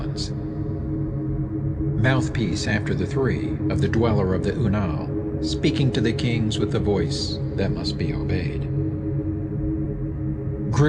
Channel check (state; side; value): identical; both; correlation 1.00